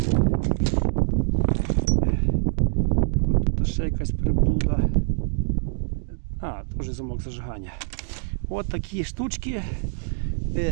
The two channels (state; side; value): silent; left; digital silence